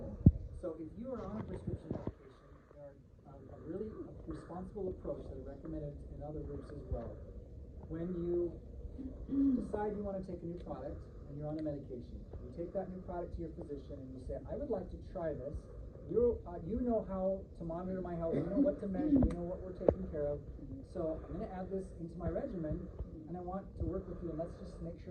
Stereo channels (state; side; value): identical; both; correlation 1.00